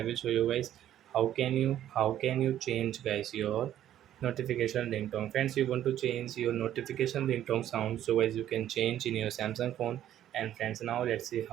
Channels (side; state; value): left; quieter; 11.7 dB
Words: will show you guys how can you change guys your notification ringtone. Friends, you want to change your notification ringtone sound, so guys you can change in your Samsung phone. And friends, now let's see